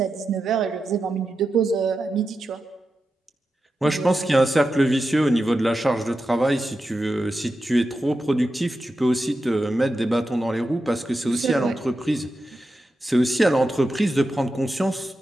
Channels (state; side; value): normal; both; correlation 0.90